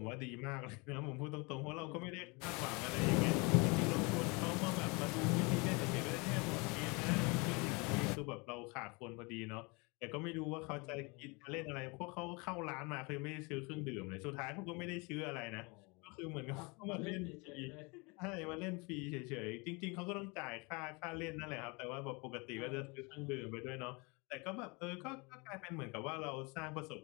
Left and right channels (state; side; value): quieter; right; 28.8 dB